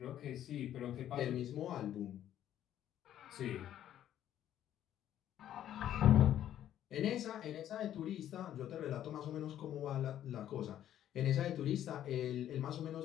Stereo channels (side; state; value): right; quieter; 11.3 dB